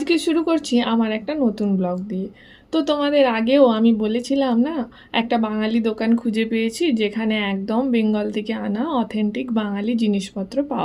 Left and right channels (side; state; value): both; identical; correlation 1.00